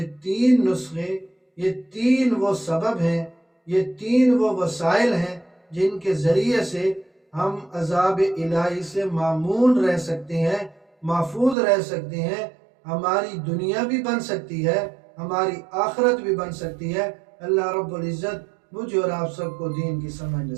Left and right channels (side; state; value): left; drops out; at 11.6 s